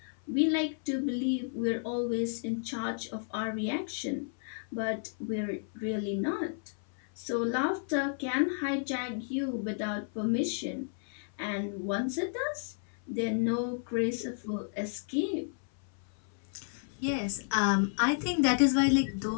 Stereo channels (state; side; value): silent; right; 56 dB below the other